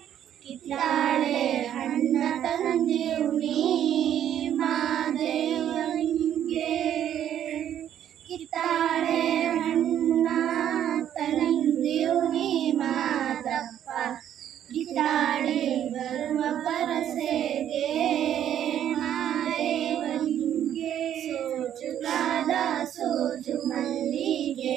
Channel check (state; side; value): quieter; left; 10.4 dB